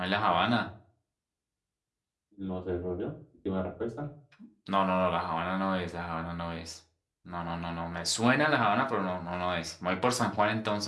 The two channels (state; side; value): identical; both; correlation 1.00